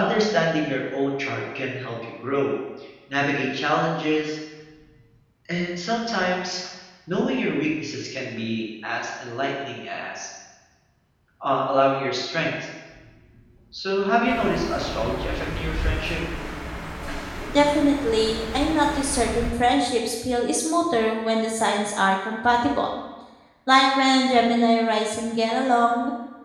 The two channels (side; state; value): both; identical; correlation 1.00